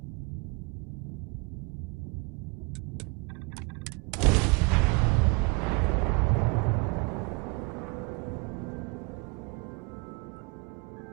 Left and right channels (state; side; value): quieter; left; 29.1 dB